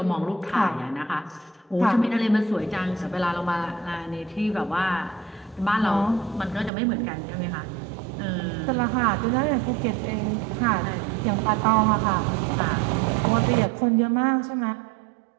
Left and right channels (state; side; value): drops out; left; at 6.7 s